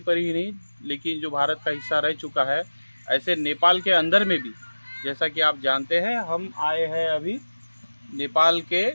ही नहीं लेकिन जो भारत का हिस्सा रह चुका है, ऐसे नेपाल के अंदर में भी। जैसा कि आप जानते हैं, हम आए हैं अभी नेपाल के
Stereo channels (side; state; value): both; inverted; correlation -1.00